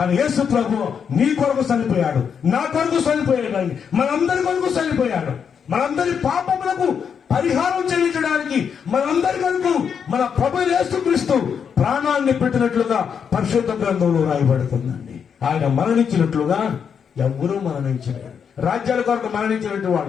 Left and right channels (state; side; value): quieter; right; 7.1 dB